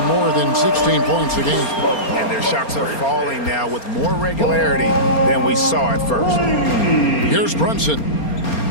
more than 16 points a game. And their shots are falling now with more regularity than we saw at first. Here's Brunson.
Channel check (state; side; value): late; right; 4.3 ms